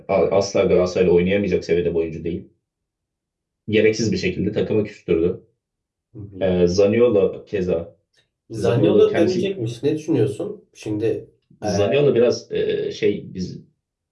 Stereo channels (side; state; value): both; identical; correlation 1.00